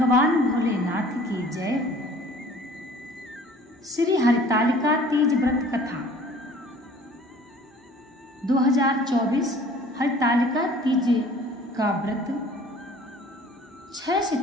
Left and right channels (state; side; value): normal; both; correlation 0.50